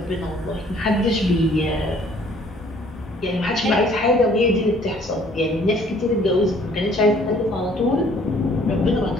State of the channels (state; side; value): normal; both; correlation 0.58